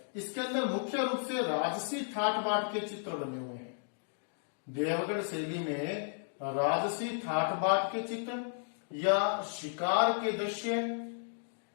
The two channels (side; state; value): right; silent; digital silence